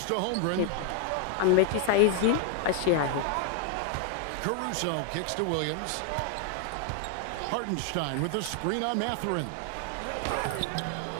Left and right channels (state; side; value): different; both; correlation 0.00